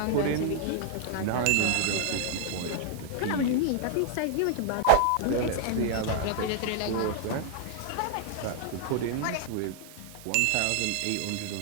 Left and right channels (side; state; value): both; different; correlation 0.00